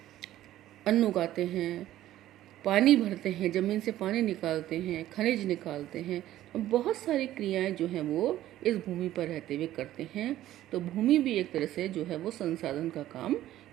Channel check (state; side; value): quieter; left; 13.7 dB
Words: अन्न उगाते हैं, पानी भरते हैं, ज़मीन से पानी निकालते हैं, खनिज निकालते हैं, बहुत सारी क्रियाएं जो हैं वो इस भूमि पर रहते हुए करते हैं। तो भूमि भी एक तरह से जो है वो संसाधन का काम